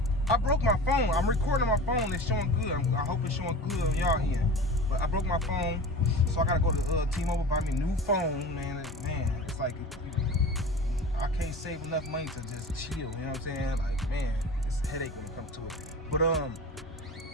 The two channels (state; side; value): normal; both; correlation 0.34